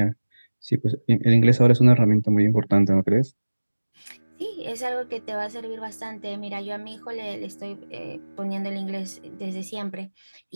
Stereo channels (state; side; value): inverted; both; correlation -1.00